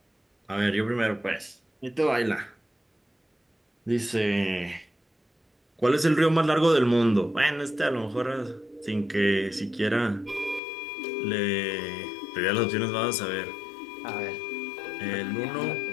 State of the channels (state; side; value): drops out; right; at 10.6 s